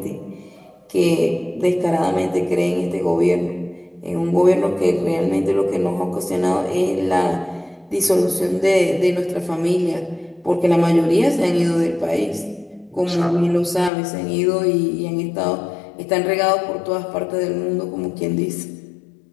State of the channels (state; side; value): drops out; right; at 13.9 s